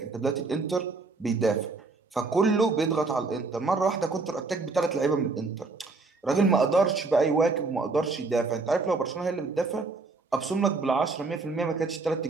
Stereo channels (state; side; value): quieter; left; 3.8 dB